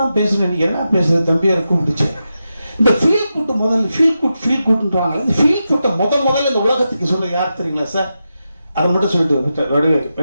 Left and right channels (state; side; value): inverted; both; correlation -0.89